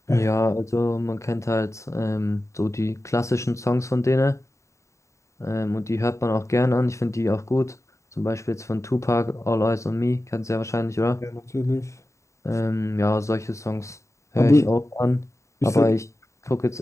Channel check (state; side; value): late; right; 0.14 ms